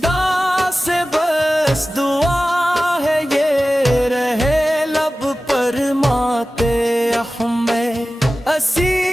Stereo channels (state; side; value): normal; both; correlation 0.96